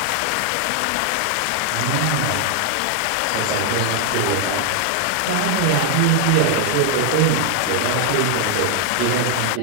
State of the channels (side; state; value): both; different; correlation 0.00